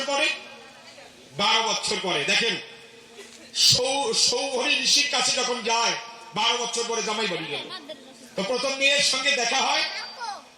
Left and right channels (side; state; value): both; identical; correlation 1.00